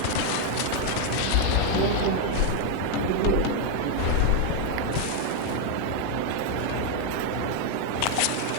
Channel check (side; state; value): both; different; correlation 0.01